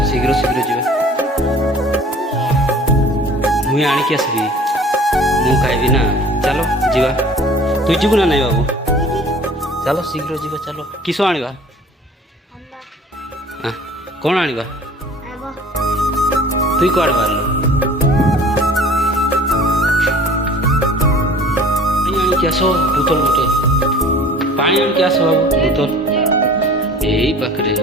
शीघ्र शीघ्र जीवा। मुई आनिकी आसबी मु खाइबी ना। चलो जीवा तुई जीवु ना नहीं बाबू चलो शीघ्र जीवा। चलो किसो आनिबा कौन आनिबा तुई कुआडे बाहरलो आनिकी आसो बोतल बोतल पानी आनिकी आसो बाबू बोतल एई पाखरे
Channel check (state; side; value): normal; both; correlation 0.47